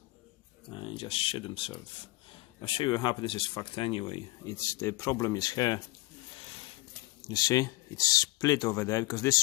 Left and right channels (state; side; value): quieter; right; 20.9 dB